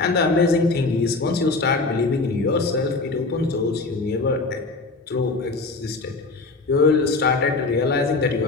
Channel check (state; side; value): quieter; right; 3.5 dB